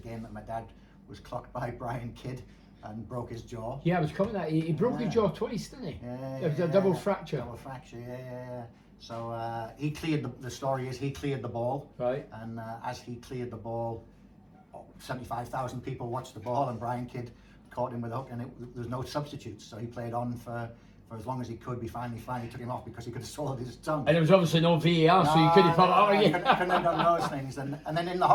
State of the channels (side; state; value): both; identical; correlation 1.00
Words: that my dad was clocked by Brian Kidd and broke his jaw. Yeah, I was coming at he broke his jaw twice, didn't he? Yeah, It was a double fracture. Double fracture, yeah. So he cleared the story is he cleared the ball. Right. And as he cleared the ball, 75,000 people watched the ball, and Brian Kidd caught him with a hook, and there's no substitutes. So he played on for as long as he could. We finally took him off because he could have swallowed his tongue. And there was obviously no VAR, so you couldn't put it out again. Couldn't have done those things. And then in the